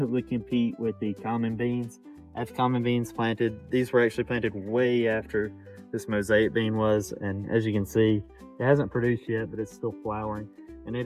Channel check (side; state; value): both; identical; correlation 1.00